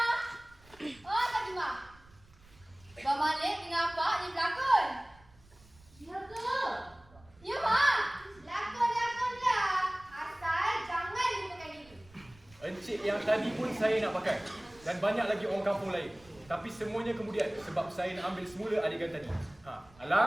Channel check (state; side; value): noise; right; rumble, 26 dB below the sound